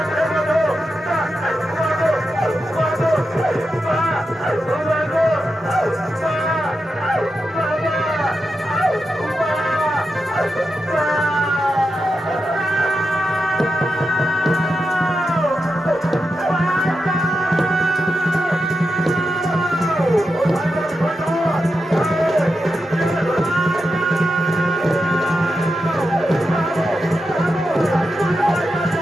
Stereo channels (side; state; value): both; normal; correlation 0.88